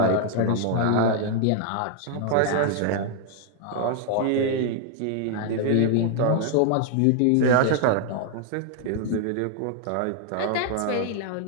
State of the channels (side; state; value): both; different; correlation 0.00